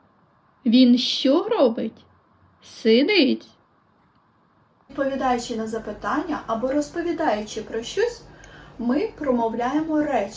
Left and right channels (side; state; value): both; identical; correlation 1.00